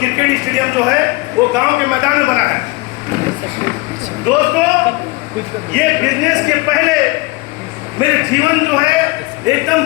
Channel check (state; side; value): quieter; right; 24.2 dB